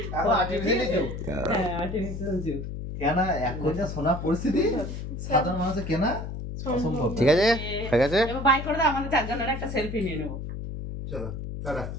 Artificially jute. হ্যাঁ, আর্টিফিশিয়াল জুট। কেনা এখন যা সোনা পরিস্থিতি, সাধারণ মানুষের কেনা অসম্ভব। ঠিক আছে, ঠিক আছে। এবার বাই করে দাও, আমাদের চারজনের একটা সেলফি নিয়ে নেবো। চলো টাটা,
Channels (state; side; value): noise; left; hum, 7 dB below the sound